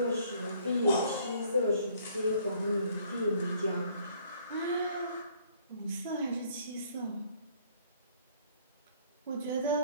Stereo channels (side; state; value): both; inverted; correlation -0.62